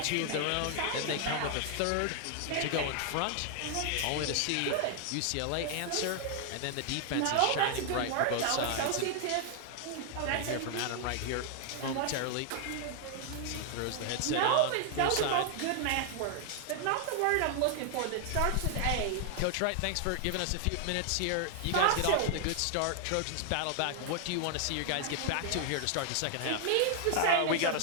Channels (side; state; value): both; different; correlation 0.00